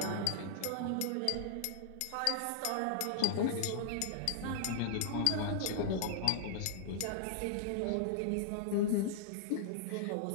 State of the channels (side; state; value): both; different; correlation -0.01